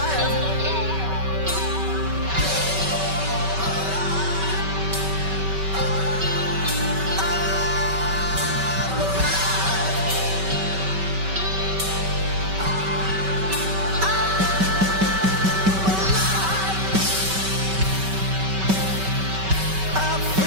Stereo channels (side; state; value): left; late; 5.2 ms